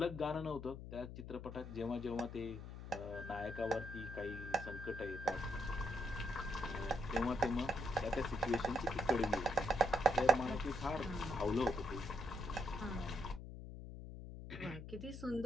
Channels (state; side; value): noise; left; hum, 10 dB below the sound